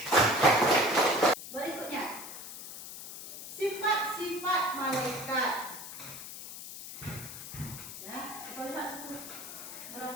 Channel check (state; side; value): noise; left; hiss, 11 dB below the sound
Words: Berikutnya, sifat-sifat malaikat. Ya, kita lihat itu.